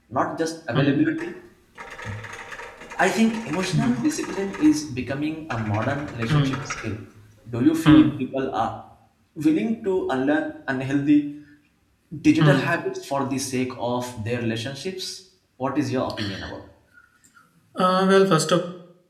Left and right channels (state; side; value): identical; both; correlation 1.00